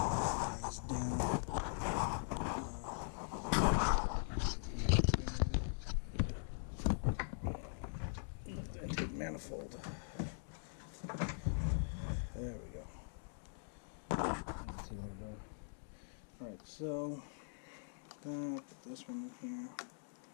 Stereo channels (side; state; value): right; silent; digital silence